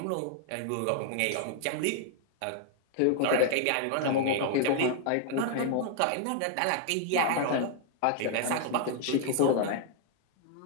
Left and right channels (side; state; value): both; different; correlation 0.00